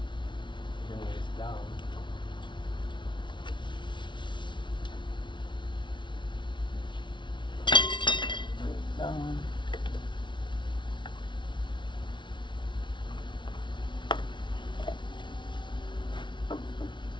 this down. Bring it down.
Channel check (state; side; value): late; right; 0.23 ms